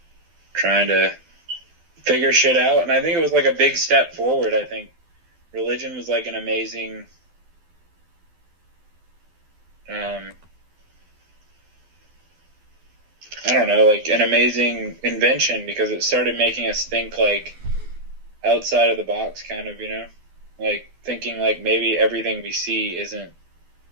trying to figure shit out. And I think it was like a big step forward. I think religion was like an amazing I don't know, like an amazing invention, because it started making us think like outside of the box, kind of, like thinking like maybe everything we see isn't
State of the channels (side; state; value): left; late; 12 ms